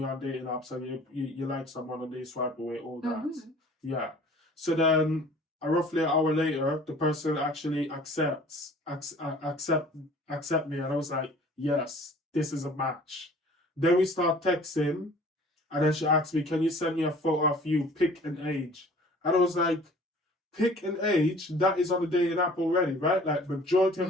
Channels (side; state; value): both; normal; correlation 0.49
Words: on dating apps and you like someone and they swipe away, all that. Yeah. So then roughly an hour later, the person actually accept me, and I was like, yes, this is a match. Then we start texting, and then she asked me, can you send me a photo of you, pick an age? And I was like, pick an age? That is on the dating app already, right? Like, majority